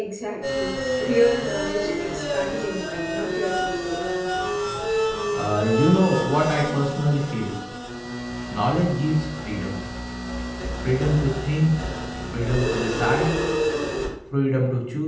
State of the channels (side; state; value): both; identical; correlation 1.00